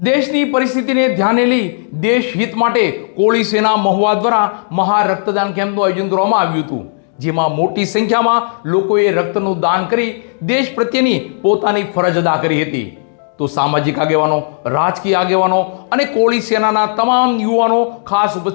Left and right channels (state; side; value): silent; right; digital silence